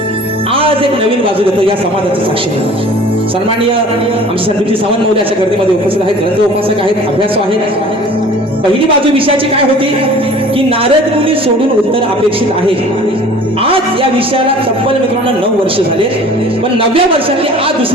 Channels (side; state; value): both; normal; correlation 0.46